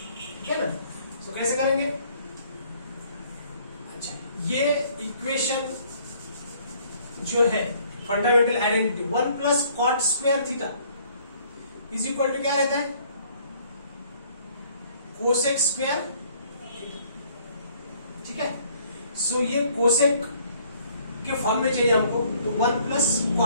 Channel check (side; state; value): both; inverted; correlation -0.60